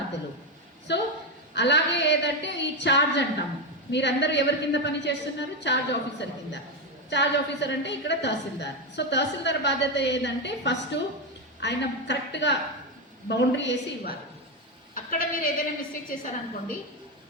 సో అలాగే ఏదంటే ఈ చార్జ్ అంటాము, మీరందరూ ఎవరి కింద పని చేస్తున్నారు, చార్జ్ ఆఫీసర్ కింద. చార్జ్ ఆఫీసర్ అంటే ఇక్కడ తహసీల్దార్. సో తహసీల్దార్ బాధ్యత ఏదంటే ఫస్ట్ ఆయన కరెక్ట్గా బౌండరీ వేసి ఇవ్వాలి. అక్కడ మీరు ఏదైనా మిస్టేక్ చేశారనుకోండి,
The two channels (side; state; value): both; normal; correlation 0.09